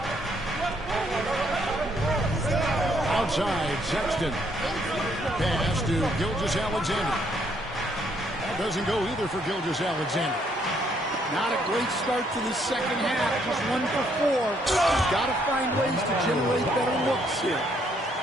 Outside, Sexton. Pass to Gilgeous-Alexander. That doesn't go either for Gilgeous-Alexander. Not a great start to the second half. Just 1 for 4. He's got to find ways to generate better looks here.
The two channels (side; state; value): both; normal; correlation 0.70